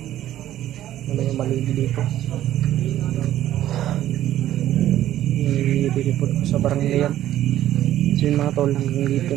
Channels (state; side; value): quieter; left; 12.8 dB